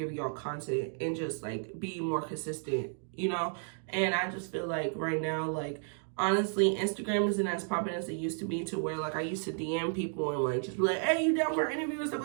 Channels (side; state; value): left; silent; 56 dB below the other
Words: y'all content and just like be more consistent, and I just feel like right now, like honestly, Instagram isn't as popular as it used to be, to where like I used to DM people and like just be like, hey, you down for an interview and stuff